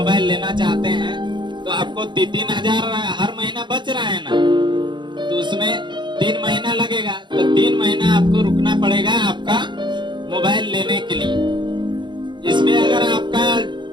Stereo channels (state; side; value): late; left; 0.22 ms